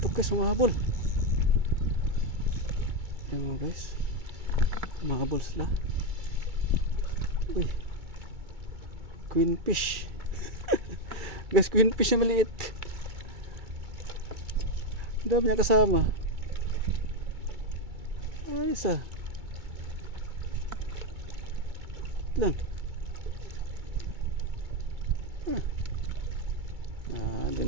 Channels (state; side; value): late; left; 2.4 ms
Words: guys, humahabol. Ayan mo guys, humahabol sila. Uy, queen fish. Guys, queen fish na maliit. Ang dami niya kasama. Ayos ah. Lang.